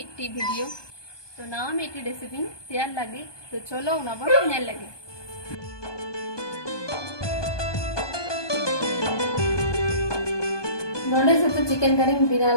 वीडियो तो नावा मिट्टी रेसिपी तैयार लगी तो चलो ना बन नेल लगे नोडे से तो चिकन करी बिना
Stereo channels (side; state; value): right; late; 1.2 ms